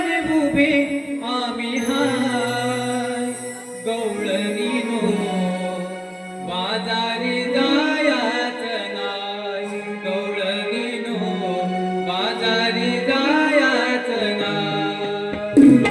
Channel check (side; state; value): both; identical; correlation 1.00